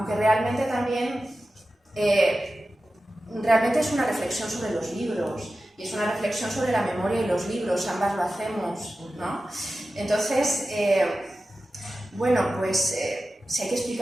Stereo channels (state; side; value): normal; both; correlation 0.94